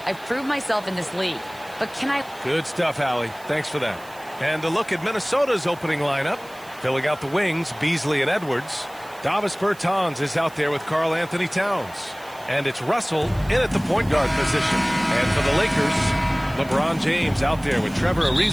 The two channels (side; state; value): right; noise; hiss, 23 dB below the sound